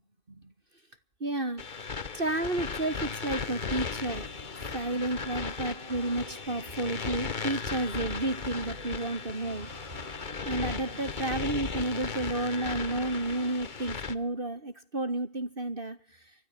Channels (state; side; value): late; left; 2.6 ms